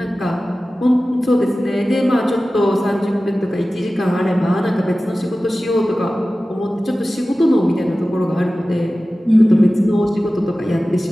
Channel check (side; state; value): both; normal; correlation 0.96